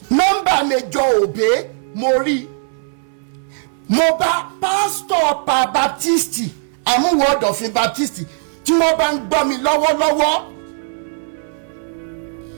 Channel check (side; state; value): left; silent; digital silence